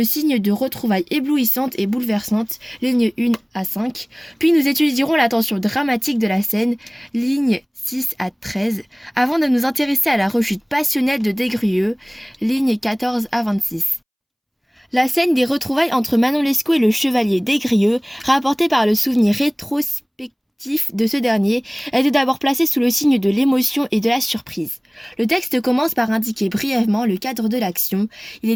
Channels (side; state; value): both; identical; correlation 1.00